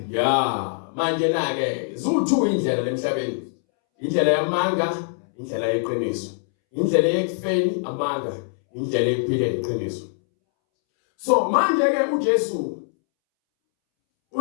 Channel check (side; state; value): right; silent; 63 dB below the other